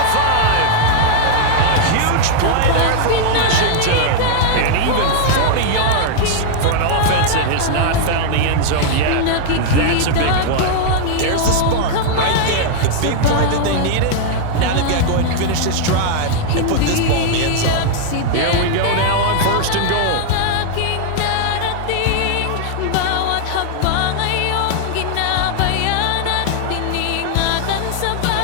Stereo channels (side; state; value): both; different; correlation -0.01